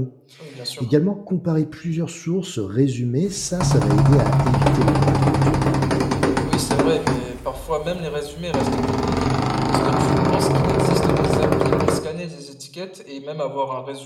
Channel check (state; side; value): identical; both; correlation 1.00